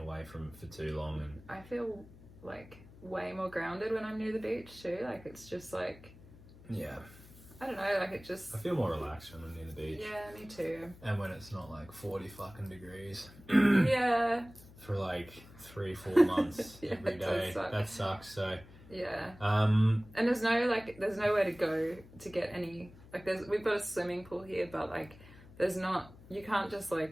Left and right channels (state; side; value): noise; left; hum, 20 dB below the sound